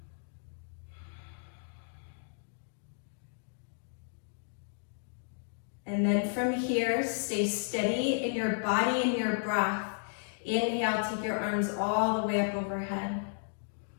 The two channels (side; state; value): right; silent; digital silence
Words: And then from here, stay steady in your body and your breath. Inhale, take your arms all the way up overhead.